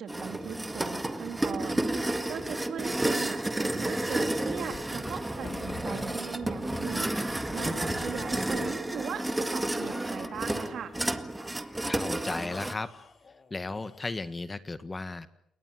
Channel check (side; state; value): both; normal; correlation 0.94